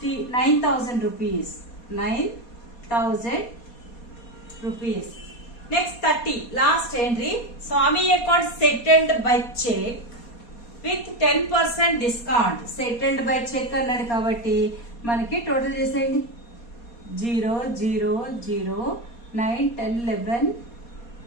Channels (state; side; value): late; right; 4.2 ms